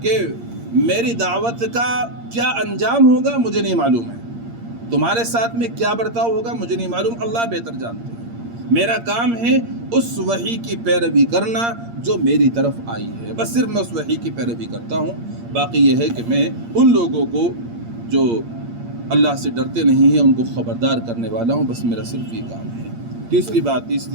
کہ میری دعوت کا کیا انجام ہوگا مجھے نہیں معلوم ہے، تمہارے ساتھ میں کیا برتاؤ ہوگا مجھے نہیں معلوم، اللہ بہتر جانتے ہیں۔ میرا کام ہے اس وحی کی پیروی کرنا جو میری طرف آئی ہے، بس صرف میں اس وحی کی پیروی کرتا ہوں۔ باقی یہ ہے کہ میں ان لوگوں کو جو اللہ سے ڈرتے نہیں ہیں ان کو خبردار کرنے والا ہوں، بس میرا صرف یہ کام ہے۔ تیسری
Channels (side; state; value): left; late; 8.6 ms